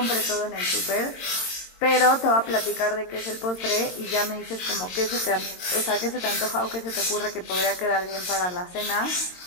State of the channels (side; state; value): right; late; 22 ms